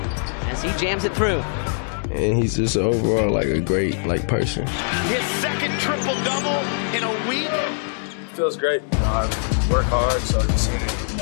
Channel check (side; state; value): right; silent; 64 dB below the other